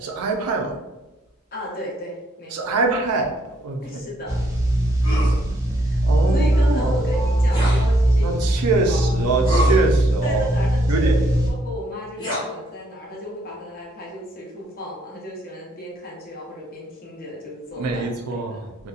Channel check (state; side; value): normal; both; correlation 0.71